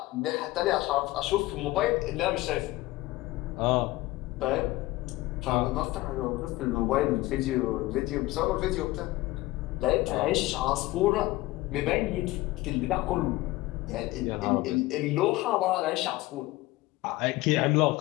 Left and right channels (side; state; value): right; quieter; 18.8 dB